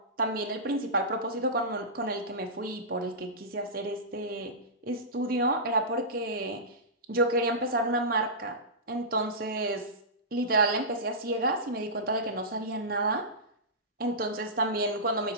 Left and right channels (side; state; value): both; normal; correlation -0.17